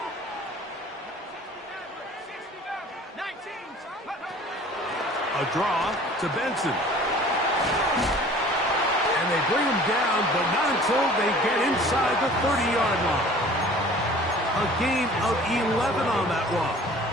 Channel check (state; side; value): normal; both; correlation 0.48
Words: A draw to Benson. And they bring him down, but not until they get inside the 30-yard line. A gain of 11 on that one.